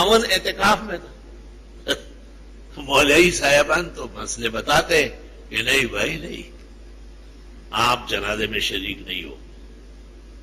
اعتکاف میں تھا. مولوی صاحبان تو مسئلے بتاتے کہ نہیں بھائی نہیں، آپ جنازے میں شریک نہیں ہو.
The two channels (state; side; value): identical; both; correlation 1.00